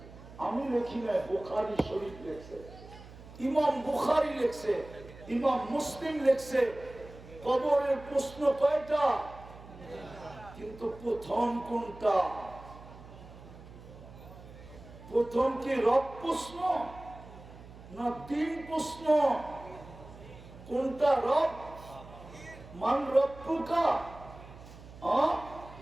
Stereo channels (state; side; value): noise; right; hum, 18 dB below the sound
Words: আমি লিখি নাই, বুখারী শরীফ লেখছে, ইমাম বুখারী লেখছে, ইমাম মুসলিম লেখছে। কবরের প্রশ্ন কয়টা? কিন্তু প্রথম কোনটা? প্রথম কি রব প্রশ্ন না দিন প্রশ্ন? কোনটা রব? মান রব্বুকা?